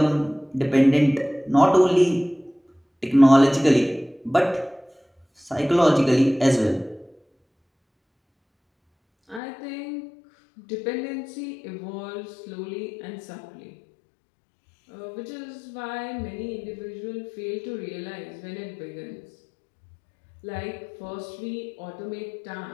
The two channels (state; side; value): drops out; right; at 9.4 s